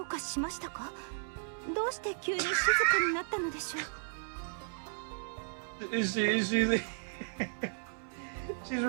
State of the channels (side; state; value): left; silent; 55 dB below the other